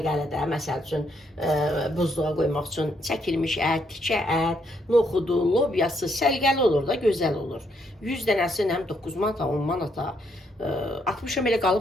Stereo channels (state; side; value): normal; both; correlation 0.74